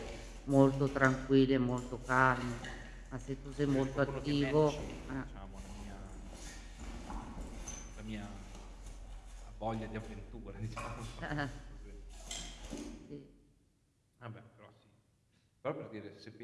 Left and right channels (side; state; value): both; identical; correlation 1.00